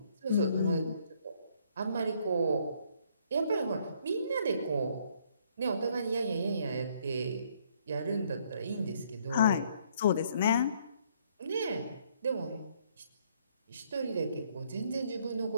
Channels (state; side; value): inverted; both; correlation -0.66